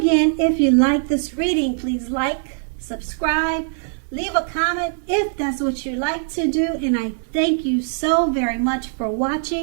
if you like this reading, please like, subscribe, leave a comment if that's what you like to do. And I thank you so very much for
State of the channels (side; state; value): left; silent; 65 dB below the other